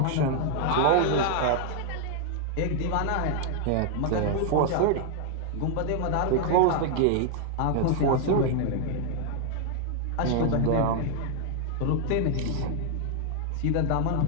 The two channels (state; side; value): different; both; correlation 0.00